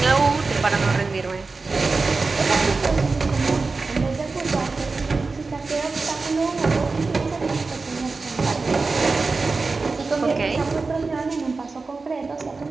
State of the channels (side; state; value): left; quieter; 4.0 dB